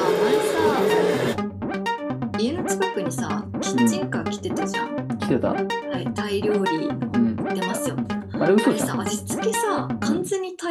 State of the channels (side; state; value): both; identical; correlation 1.00